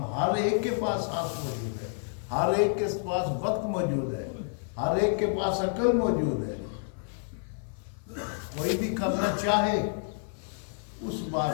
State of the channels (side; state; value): right; silent; 58 dB below the other